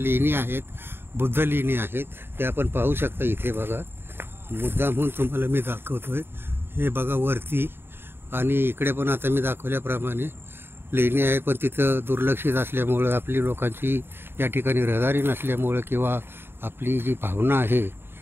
आहेत, बुद्ध लेणी आहेत. ते आपण पाहू शकता इथे बघा. मुद्दाम म्हणून तुम्हाला मी दाखवतोय. हे बघा वरती, आणि इकडे पण आता मी दाखवल्याप्रमाणे लेणी आहे. पण तिथं दुर्लक्षित असल्यामुळं, आपली लोकांची या ठिकाणी रहदारी नसल्यामुळं, किंवा आपली जी भावना आहे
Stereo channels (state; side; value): late; left; 0.11 ms